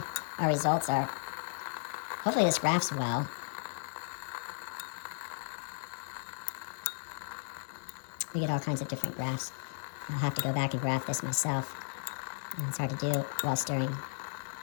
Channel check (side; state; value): right; silent; digital silence